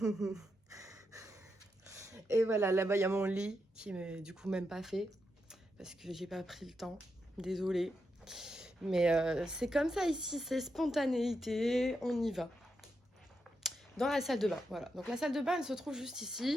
Et voilà, là-bas, il y a mon lit qui m'est du coup même pas fait. Parce que j'ai pas pris le temps. Désolée. Mais c'est comme ça ici, c'est spontanéité. On y va. Dans la salle de bain, voilà. Donc la salle de bain, elle se trouve juste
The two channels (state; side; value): normal; both; correlation 0.84